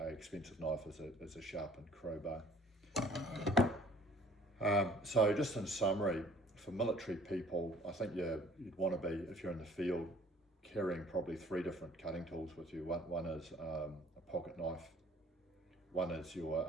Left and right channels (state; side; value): normal; both; correlation 0.54